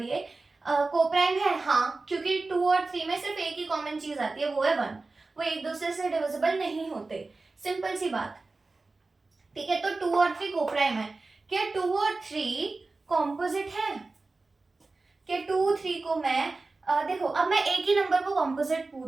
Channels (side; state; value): left; quieter; 3.6 dB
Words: ये कोप्राइम है? हाँ, क्योंकि 2 और 3 में सिर्फ एक ही कॉमन चीज आती है, वो है 1। वो एक दूसरे से डिविजिबल नहीं होते, सिंपल सी बात, ठीक है। तो 2 और 3 कोप्राइम है। क्या 2 और 3 कॉम्पोजिट है? क्या 2 3 को मैं देखो, अब मैं एक ही नंबर को कॉम्पोजिट